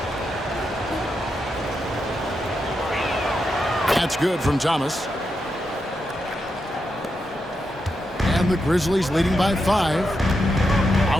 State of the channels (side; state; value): both; normal; correlation 0.85